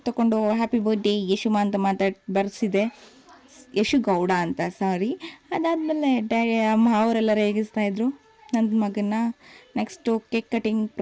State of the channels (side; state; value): both; identical; correlation 1.00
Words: ತೊಗೊಂಡು ಹ್ಯಾಪಿ ಬರ್ಡೇ ಯಶುಮ ಅಂತ ಬರ್ಸಿದೆ. ಯಶು ಗೌಡ ಅಂತ, ಸಾರಿ. ಅದಾದಮೇಲೆ ಅವರೆಲ್ಲ ರೇಗಿಸ್ತಾಯಿದ್ರು ನನ್ನ ಮಗನ್ನ. Next cake cutting